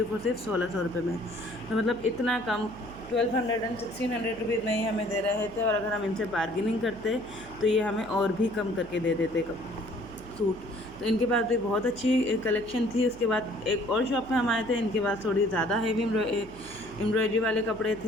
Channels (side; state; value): right; noise; hum, 19 dB below the sound